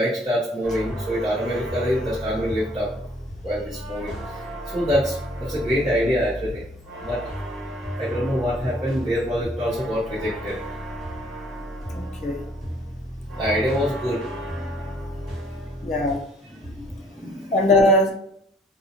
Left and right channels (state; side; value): normal; both; correlation 0.61